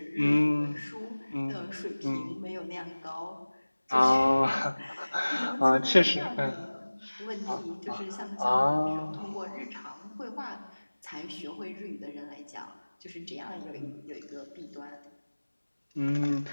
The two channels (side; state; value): both; inverted; correlation -1.00